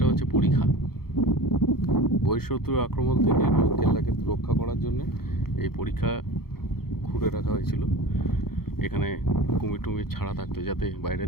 হচ্ছে পরীক্ষা। বহিঃশত্রুর আক্রমণ থেকে কেল্লাকে রক্ষা করার জন্য এই পরীক্ষা খুঁড়ে রাখা হয়েছিল। এখানে কুমির টুমির ছাড়া থাকতো, যাতে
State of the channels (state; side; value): late; right; 0.95 ms